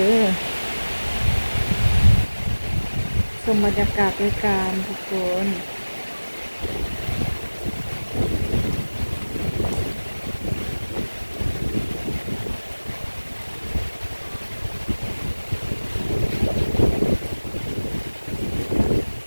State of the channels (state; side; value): inverted; both; correlation -1.00